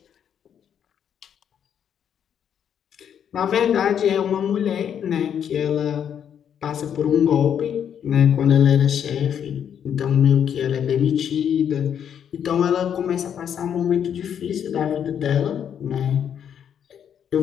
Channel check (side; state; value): right; quieter; 8.7 dB